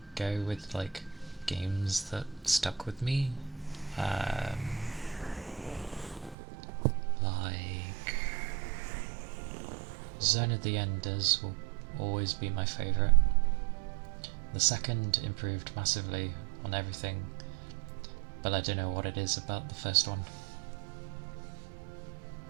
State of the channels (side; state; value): left; drops out; at 6.4 s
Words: go with like games that stuck with me, like Zone of the Enders will always be my favourite. The second improved massively on everything, but I don't know what it is about the first one.